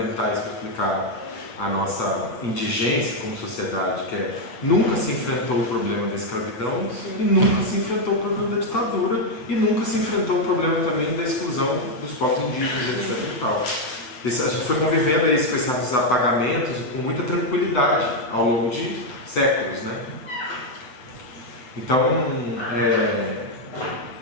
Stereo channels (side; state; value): right; late; 8.0 ms